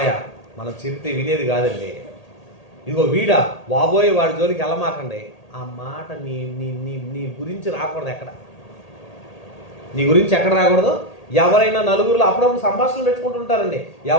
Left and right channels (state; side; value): late; right; 1.8 ms